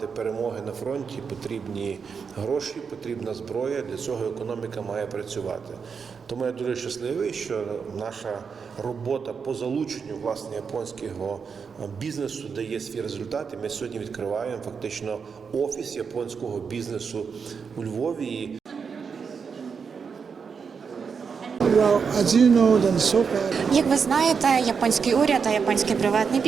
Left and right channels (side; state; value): left; quieter; 5.9 dB